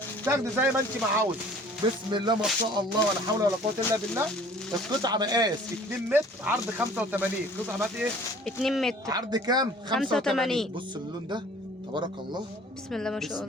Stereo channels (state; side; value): normal; both; correlation 0.51